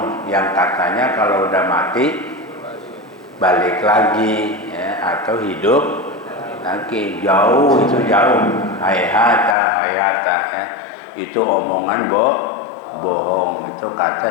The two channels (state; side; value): drops out; right; at 9.6 s